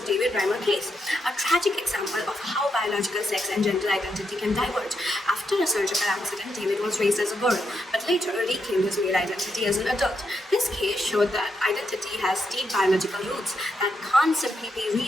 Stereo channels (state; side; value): normal; both; correlation 0.82